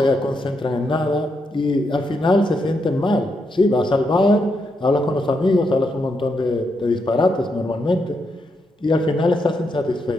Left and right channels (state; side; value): normal; both; correlation 0.81